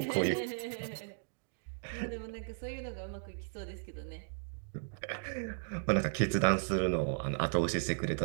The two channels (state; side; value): silent; left; digital silence